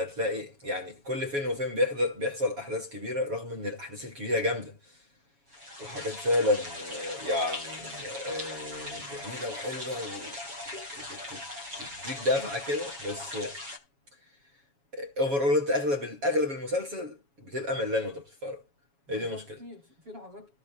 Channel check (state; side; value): late; left; 7.2 ms